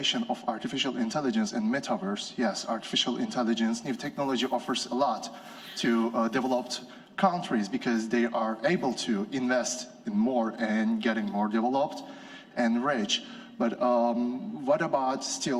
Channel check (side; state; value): both; identical; correlation 1.00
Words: of artificial intelligence and metaverse? Yes, artificial intelligence, new technology offers a lot to developed countries because they are able to invest in more and getting more developed and rich. But what about